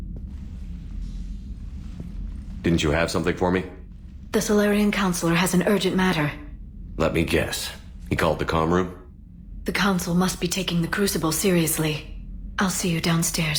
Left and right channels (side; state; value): both; identical; correlation 1.00